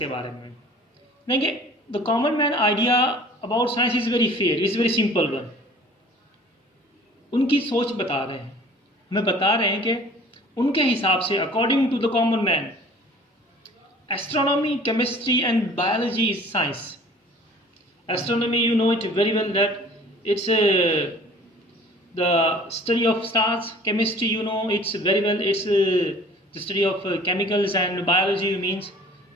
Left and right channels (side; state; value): both; normal; correlation 0.49